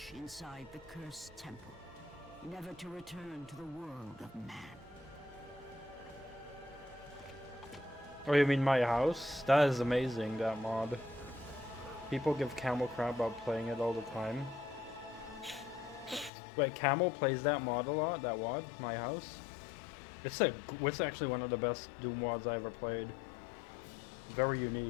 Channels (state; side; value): drops out; right; at 16.3 s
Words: inside the cursed temple, never to return to the world of man. Oh, you mean my house? That is amazing, that mod. People give Camel crap about playing it all the time. Wait, Camel plays that mod a lot? That mod? My house? It's actually one of the best Doom mods I ever played. Very